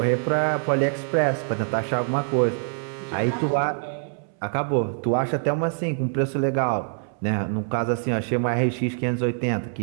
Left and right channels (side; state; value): left; silent; 62 dB below the other